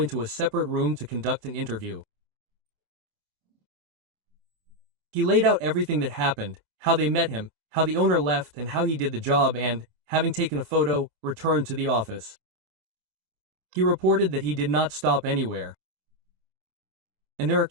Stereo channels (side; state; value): left; late; 27 ms